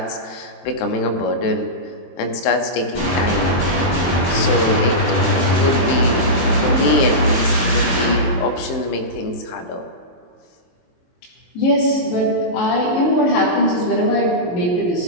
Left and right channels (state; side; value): late; right; 23 ms